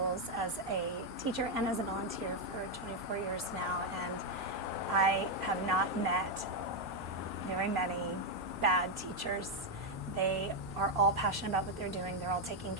as a teacher and as a volunteer for 24 years now, and I have not met very many bad teachers. They are all passionate about what they're doing. They're all taking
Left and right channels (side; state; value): both; normal; correlation 0.03